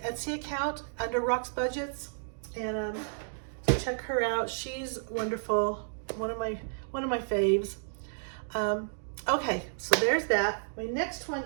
account under Rock's Budgets, and so check her out. She's wonderful. One of my faves. Okay, so there's that. My next one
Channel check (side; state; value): left; silent; digital silence